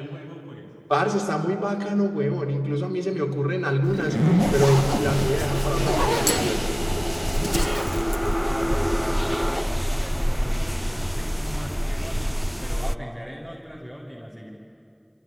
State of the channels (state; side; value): identical; both; correlation 1.00